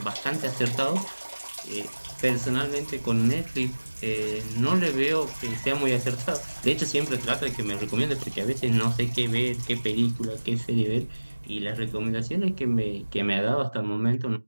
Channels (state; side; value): inverted; both; correlation -1.00